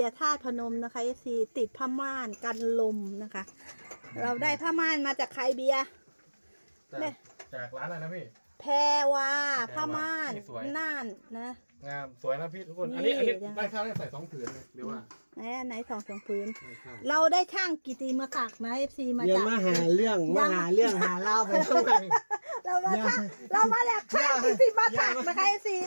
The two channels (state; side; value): inverted; both; correlation -1.00